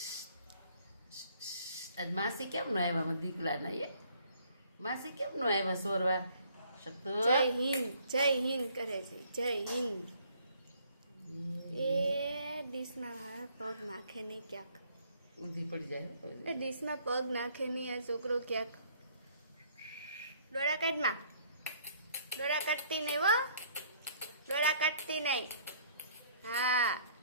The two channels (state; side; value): inverted; both; correlation -0.61